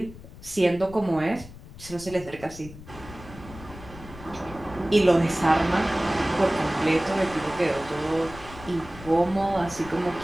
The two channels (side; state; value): left; noise; rumble, 16 dB below the sound